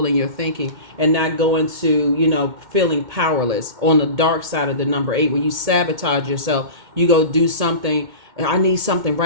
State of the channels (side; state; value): left; late; 2.1 ms